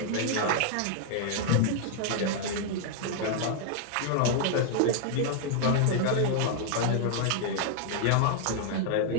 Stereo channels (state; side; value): different; both; correlation 0.00